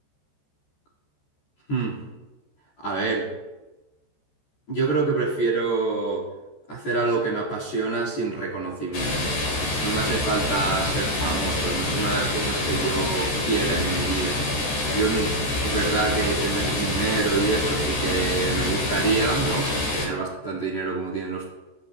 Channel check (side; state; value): right; late; 14 ms